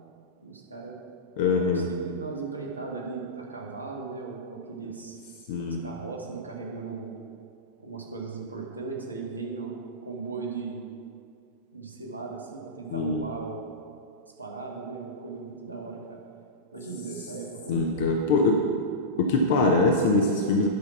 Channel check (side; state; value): both; normal; correlation -0.16